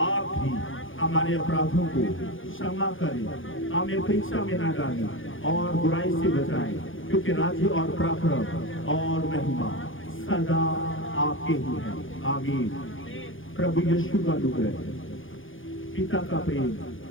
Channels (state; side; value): late; right; 0.58 ms